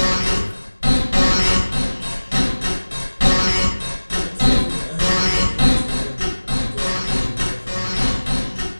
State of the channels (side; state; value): both; inverted; correlation -1.00